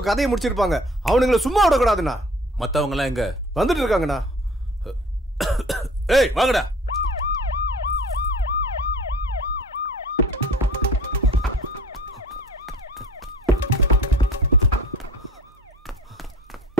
கதையை முடிச்சிருப்பாங்க. அவனுங்களை சும்மா விடக்கூடாதுண்ணா. மத்தவங்க எல்லாம் எங்க? வந்துட்டு இருக்காங்கண்ணா. ஏய் வாங்கடா.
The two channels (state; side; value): normal; both; correlation 0.47